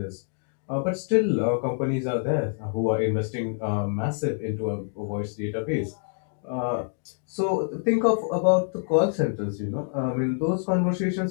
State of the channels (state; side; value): silent; right; 61 dB below the other